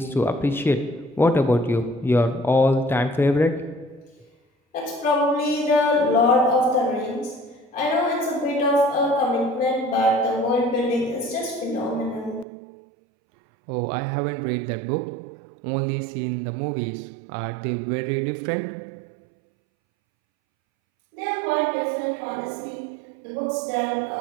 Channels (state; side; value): drops out; left; at 12.5 s